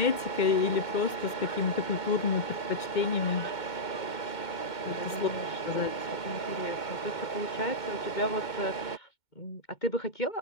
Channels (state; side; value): late; right; 2.2 ms